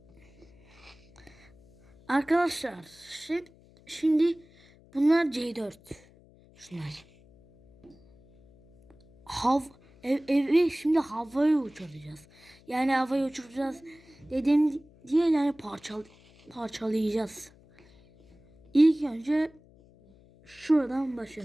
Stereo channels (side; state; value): left; noise; hum, 27 dB below the sound